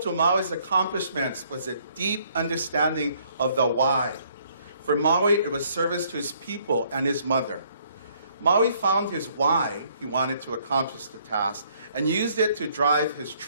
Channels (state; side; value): inverted; both; correlation -0.65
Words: Maui's accomplishments was a deep understanding of the why. For Maui, it was service to his people and his mother. Maui found his why he wanted to accomplish the task and used it to drive his